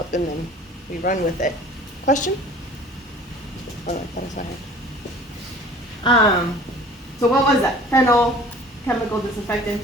and then we run with it. Question? Oh, I thought I saw her. So what was that? Phenol, chemical disinfectant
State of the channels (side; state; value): both; normal; correlation 0.47